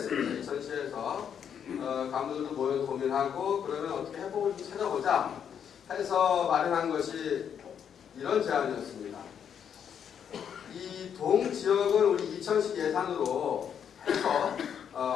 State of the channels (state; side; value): quieter; right; 8.2 dB